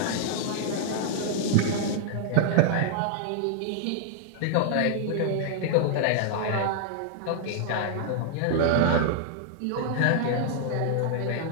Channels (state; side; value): different; both; correlation -0.01